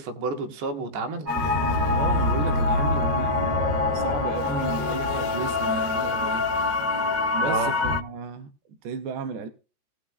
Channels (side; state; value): left; late; 13 ms